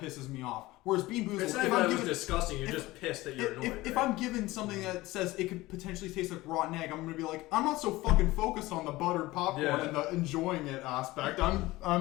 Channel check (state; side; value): quieter; right; 19.0 dB